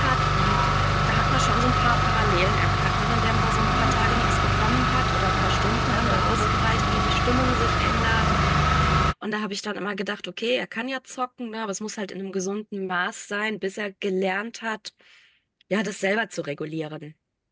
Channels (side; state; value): both; identical; correlation 1.00